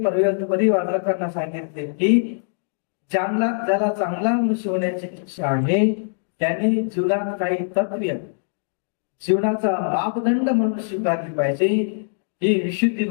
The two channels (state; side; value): silent; right; digital silence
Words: परिवाचकांना सांगितले की ज्याला चांगला मनुष्य होण्याची इच्छा आहे त्यांनी जीवनात काही तत्त्व जीवनाचा मापदंड म्हणून स्वीकारली पाहिजे. ही विशुद्धी